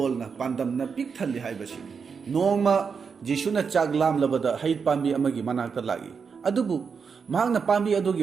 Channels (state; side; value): quieter; left; 5.9 dB